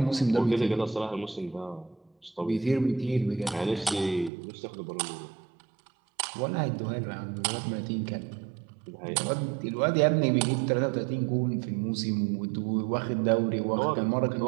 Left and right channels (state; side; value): drops out; left; at 4.3 s